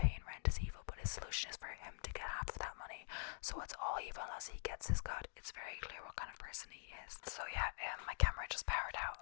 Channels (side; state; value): right; silent; digital silence